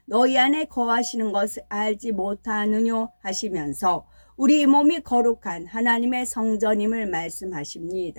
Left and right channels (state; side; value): inverted; both; correlation -1.00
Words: 너희 안에 거하시는 것을 알지 못하느뇨 하시면서 우리 몸이 거룩한 하나님의 성전임을